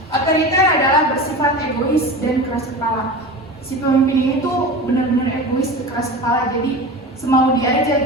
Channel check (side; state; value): both; normal; correlation 0.31